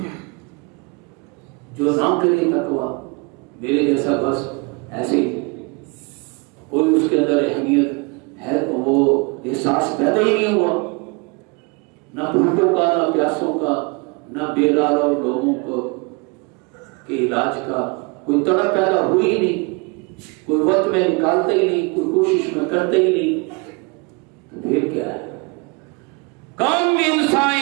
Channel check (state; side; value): quieter; left; 30.0 dB